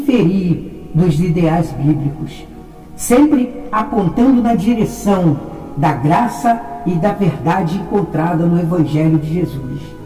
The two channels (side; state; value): both; identical; correlation 1.00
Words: dos ideais bíblicos, sempre apontando na direção da graça e da verdade encontrada no Evangelho de Jesus.